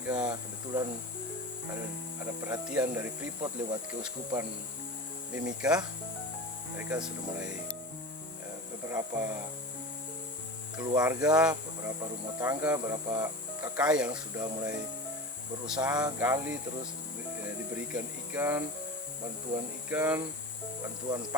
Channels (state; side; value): normal; both; correlation 0.29